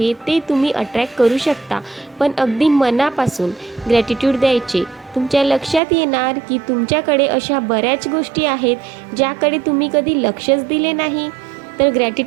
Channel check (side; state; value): left; drops out; at 5.8 s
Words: ते तुम्ही अट्रॅक्ट करू शकता, पण अगदी मनापासून ग्रॅटिट्यूड द्यायचे. तुमच्या लक्षात येणार की तुमच्याकडे अशा बऱ्याच गोष्टी आहेत ज्याकडे तुम्ही कधी लक्षच दिले नाही. तर